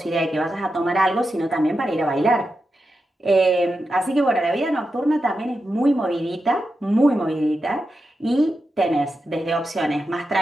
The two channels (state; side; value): normal; both; correlation 0.89